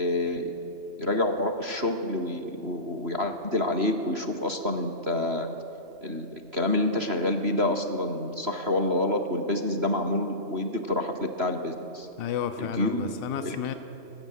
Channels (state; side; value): late; left; 3.0 ms